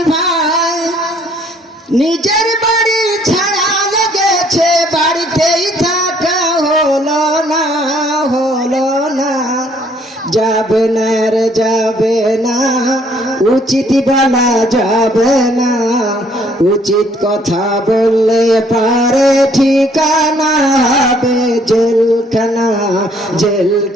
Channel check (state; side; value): normal; both; correlation 0.63